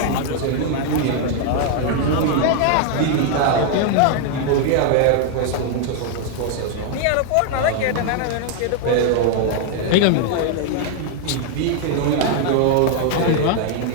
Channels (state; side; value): different; both; correlation 0.00